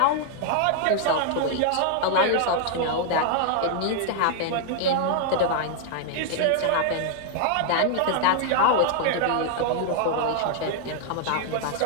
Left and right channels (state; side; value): different; both; correlation 0.00